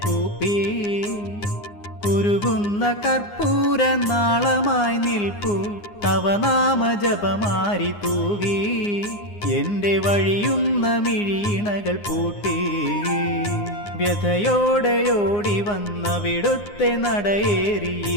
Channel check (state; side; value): late; right; 9.7 ms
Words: കൂപ്പി ഉരുകുന്ന കർപ്പൂര നാളമായി നിൽപ്പു തവ നാമജപമാരി തൂകി എന്റെ വഴിയുന്ന മിഴീണകൾ പൂട്ടി വ്യഥയോടെയോടി വന്നവിടുത്തെ നടയേറി